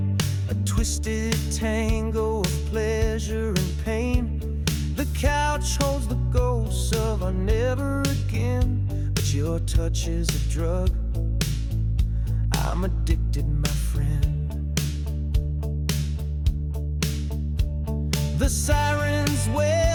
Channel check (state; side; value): identical; both; correlation 1.00